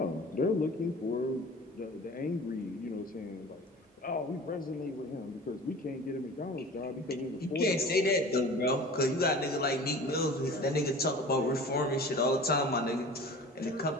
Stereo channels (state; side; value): normal; both; correlation 0.40